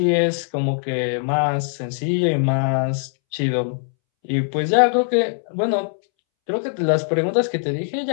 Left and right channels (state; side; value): silent; right; 65 dB below the other